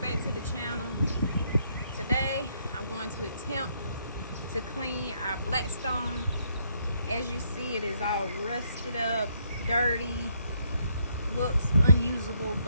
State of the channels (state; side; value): inverted; both; correlation -0.72